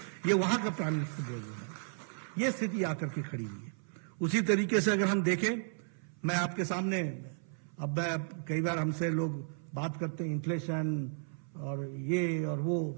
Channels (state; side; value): silent; left; 55 dB below the other